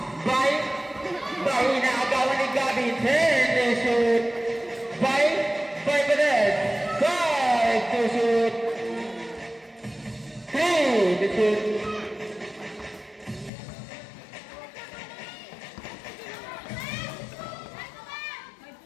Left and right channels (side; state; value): right; drops out; at 13.5 s